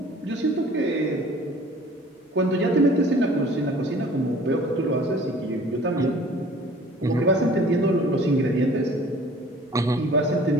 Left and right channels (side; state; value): both; normal; correlation 0.49